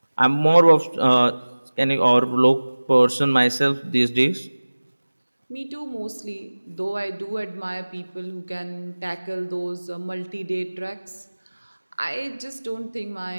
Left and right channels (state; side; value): inverted; both; correlation -1.00